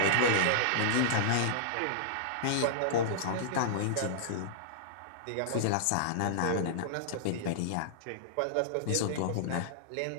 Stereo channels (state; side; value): different; both; correlation -0.02